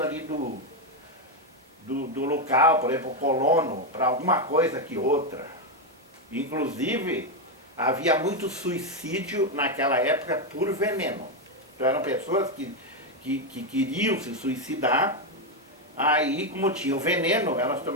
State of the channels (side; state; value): both; normal; correlation 0.05